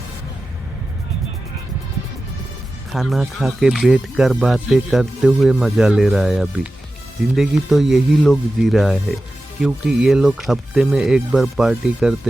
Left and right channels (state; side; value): normal; both; correlation 0.94